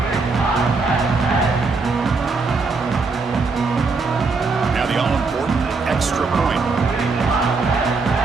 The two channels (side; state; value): left; quieter; 4.2 dB